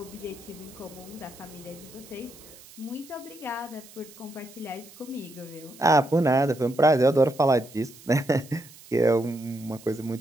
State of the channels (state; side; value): noise; right; hiss, 21 dB below the sound